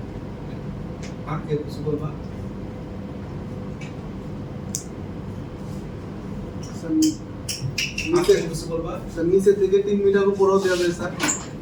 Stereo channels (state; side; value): identical; both; correlation 1.00